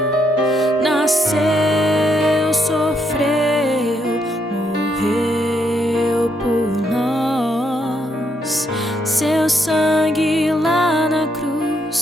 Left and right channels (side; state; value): both; normal; correlation 0.76